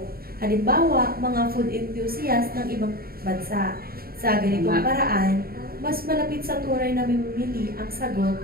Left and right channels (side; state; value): left; late; 0.44 ms